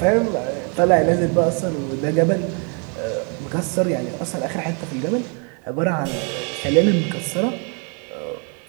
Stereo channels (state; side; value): quieter; left; 37.7 dB